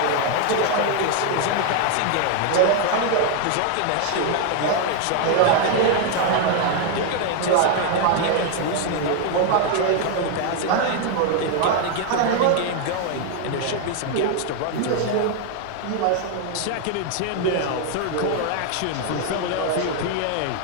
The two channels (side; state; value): both; different; correlation 0.00